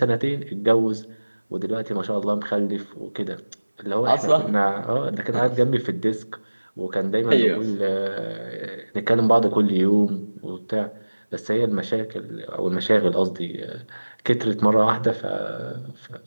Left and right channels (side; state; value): both; inverted; correlation -1.00